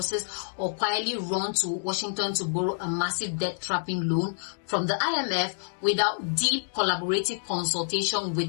or quietly run to Washington to borrow a massive debt-trapping loan from the IMF without deep collaborative consultation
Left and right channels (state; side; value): silent; right; digital silence